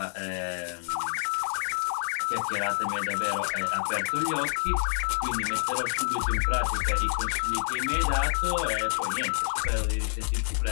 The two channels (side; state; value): right; silent; digital silence